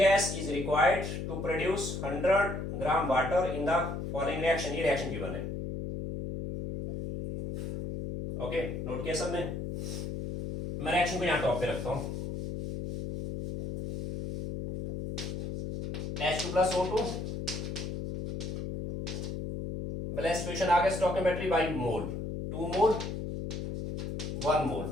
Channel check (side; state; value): left; noise; hum, 5 dB below the sound